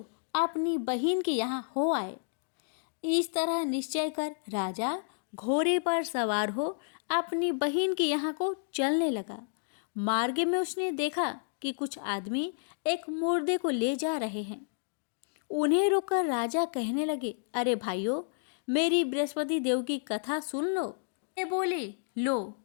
अपनी बहन के यहाँ हो आए। इस तरह निश्चय कर राजा घोड़े पर सवार हो अपनी बहन के यहाँ को चलने लगा। मार्ग में उसने देखा कि कुछ आदमी एक मुर्दे को ले जा रहे हैं। उन्हें रोककर राजा कहने लगे, अरे भाइयों, मेरी बृहस्पति देव की कथा सुन लो। ये बोले, लो,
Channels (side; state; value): right; silent; digital silence